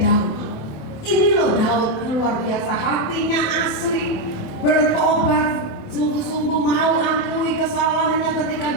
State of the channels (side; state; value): right; late; 28 ms